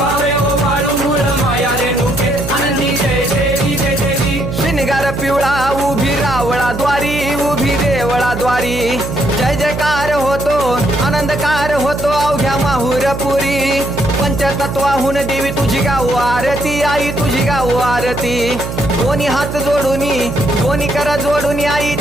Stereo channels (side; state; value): right; noise; hum, 7 dB below the sound